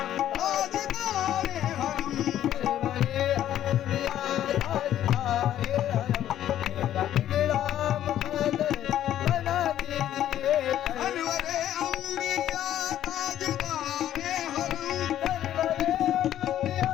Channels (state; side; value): quieter; right; 11.7 dB